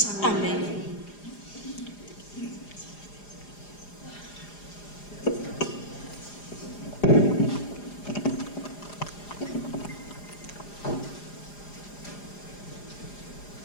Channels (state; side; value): late; right; 4.9 ms